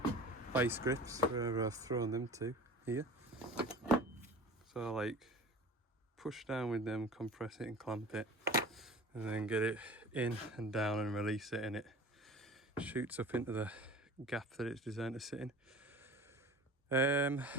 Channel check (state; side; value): normal; both; correlation 0.37